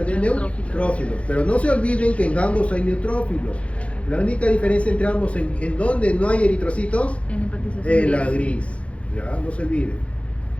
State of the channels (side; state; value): right; late; 0.062 ms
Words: de neutrófilos. Pero no se olviden que en ambos hay neutrófilos. La única diferencia entre ambos, en donde no hay eritrocitos, en la gris. Ya, no se olviden.